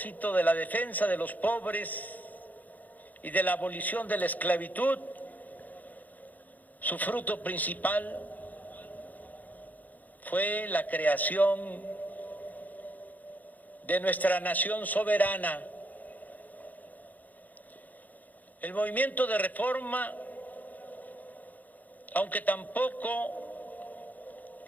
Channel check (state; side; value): late; right; 0.081 ms